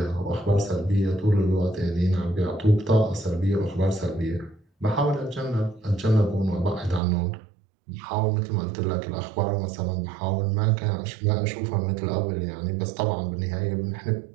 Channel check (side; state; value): left; drops out; at 7.0 s